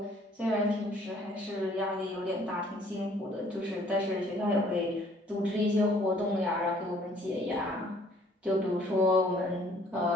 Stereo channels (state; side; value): normal; both; correlation 0.59